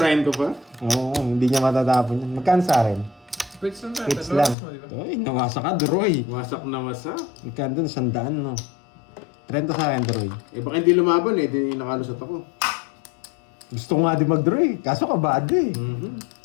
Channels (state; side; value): drops out; right; at 4.5 s